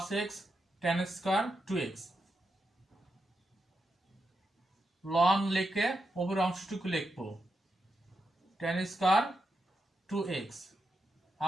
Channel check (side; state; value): both; normal; correlation 0.85